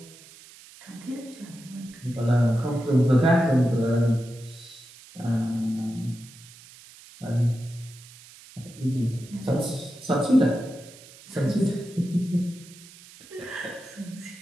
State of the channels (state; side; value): noise; right; hiss, 21 dB below the sound